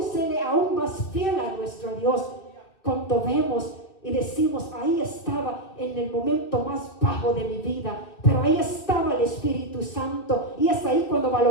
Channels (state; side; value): late; right; 2.8 ms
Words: serle aún más fiel a nuestro Dios. Cuando vemos y decimos, ahí estaba en el momento más bajo de mi vida, pero ahí estaba el Espíritu Santo. Y es ahí cuando